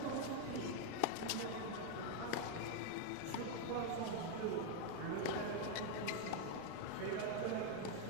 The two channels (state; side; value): different; both; correlation 0.00